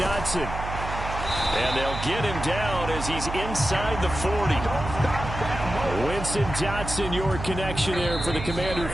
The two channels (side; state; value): right; noise; hum, 7 dB below the sound